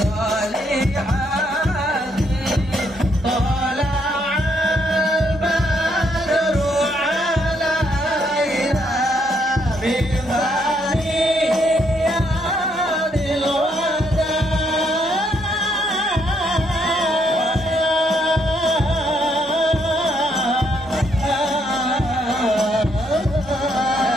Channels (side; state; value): both; normal; correlation 0.73